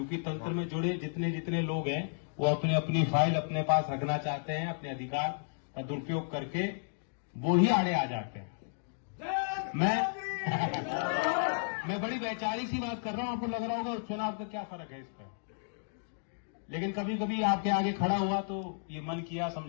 तंत्र में जुड़े जितने जितने लोग हैं वो अपनी अपनी फाइल अपने पास रखना चाहते हैं, अपने अधिकार का दुरुपयोग करके वो ही आड़े आ जाते हैं। मैं बड़ी वैचारिक सी बात कर रहा हूं, आपको लग रहा होगा चुनाव का क्या फर्क है इस पर, लेकिन कभी कभी आपके आगे खड़ा हुआ तो ये मन किया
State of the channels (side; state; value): right; silent; digital silence